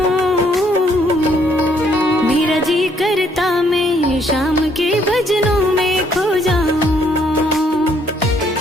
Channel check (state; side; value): normal; both; correlation 0.67